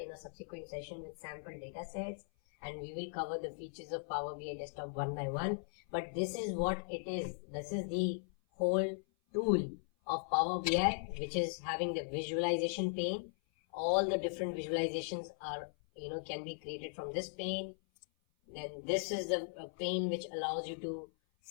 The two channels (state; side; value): silent; right; 52 dB below the other